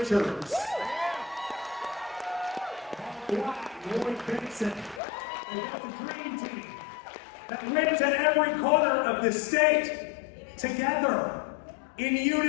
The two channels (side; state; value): right; drops out; at 5.0 s